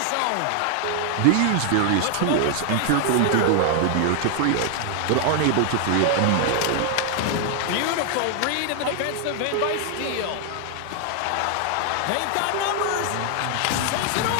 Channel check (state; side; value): different; both; correlation 0.00